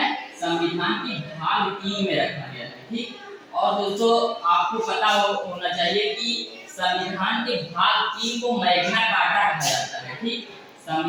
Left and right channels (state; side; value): identical; both; correlation 1.00